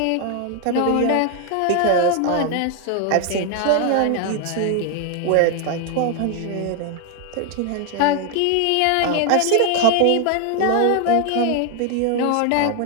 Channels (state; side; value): different; both; correlation 0.00